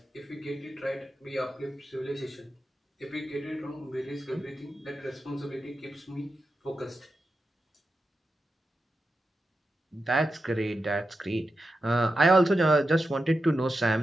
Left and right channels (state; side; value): normal; both; correlation 0.90